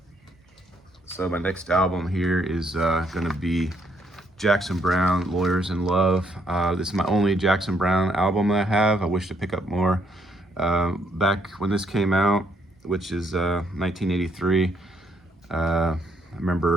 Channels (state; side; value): normal; both; correlation 0.72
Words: So my next album here is gonna be Jackson Browne, Lawyers in Love. This is my only Jackson Browne album that I have. I wish to pick up more. Back when this came out, which is 1983, I